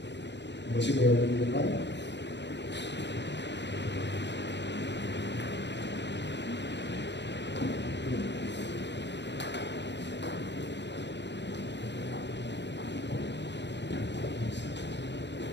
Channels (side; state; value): right; late; 0.51 ms